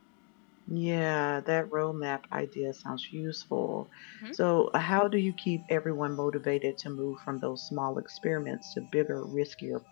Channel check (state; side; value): quieter; right; 38.3 dB